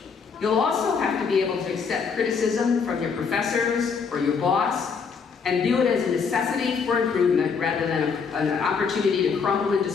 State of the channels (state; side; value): quieter; right; 5.7 dB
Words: You'll also have to be able to accept criticism from your professors or your boss and view it as a necessity for improvement rather than an opportunity to crumble in